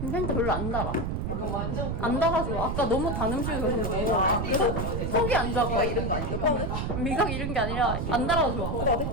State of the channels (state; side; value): noise; right; rumble, 2 dB below the sound